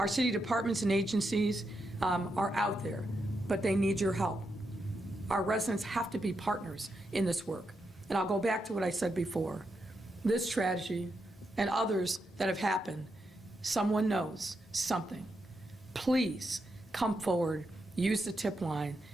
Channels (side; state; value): both; normal; correlation 0.84